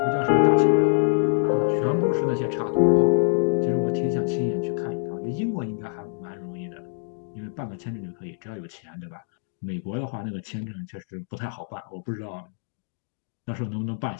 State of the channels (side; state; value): right; silent; digital silence